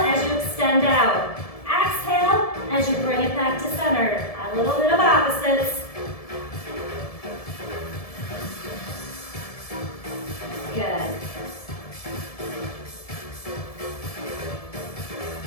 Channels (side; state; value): right; late; 1.7 ms